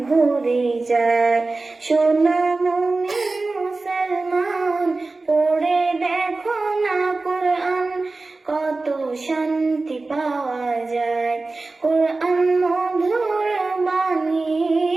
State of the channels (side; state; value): left; quieter; 3.4 dB